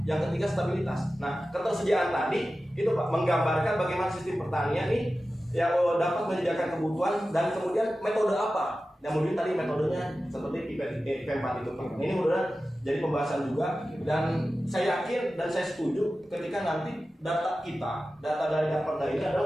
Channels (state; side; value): normal; both; correlation 0.94